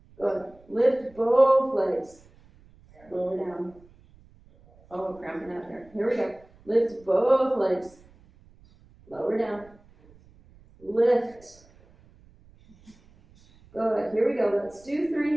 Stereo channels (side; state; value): right; noise; rumble, 27 dB below the sound